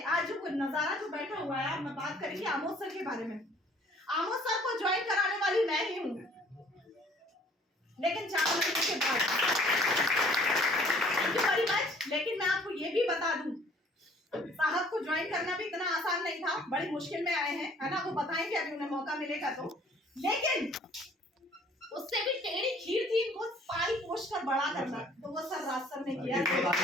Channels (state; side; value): normal; both; correlation 0.56